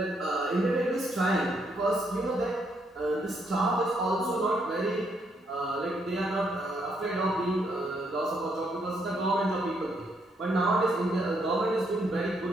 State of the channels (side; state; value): both; normal; correlation 0.74